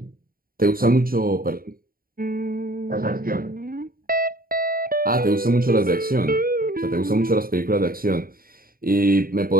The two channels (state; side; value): late; left; 0.42 ms